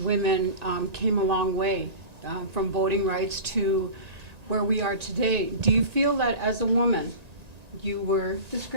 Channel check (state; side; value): late; left; 1.9 ms